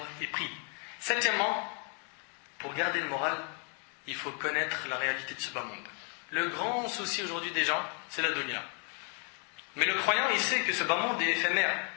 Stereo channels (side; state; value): right; quieter; 39.5 dB